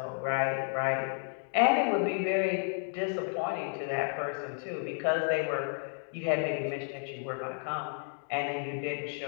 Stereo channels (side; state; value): right; silent; 56 dB below the other